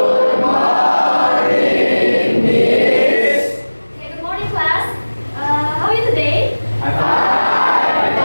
Okay, good morning, class. How are you today?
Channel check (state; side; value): inverted; both; correlation -1.00